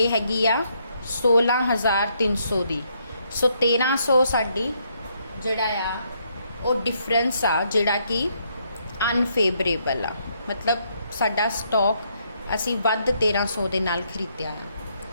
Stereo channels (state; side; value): inverted; both; correlation -0.73